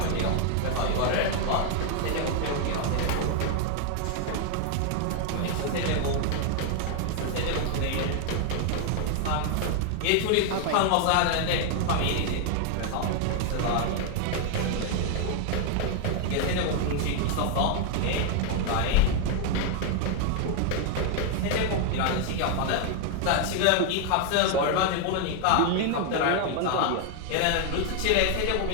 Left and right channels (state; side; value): different; both; correlation 0.00